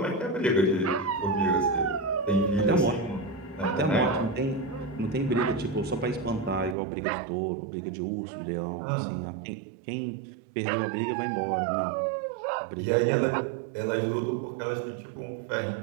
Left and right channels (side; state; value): left; drops out; at 6.8 s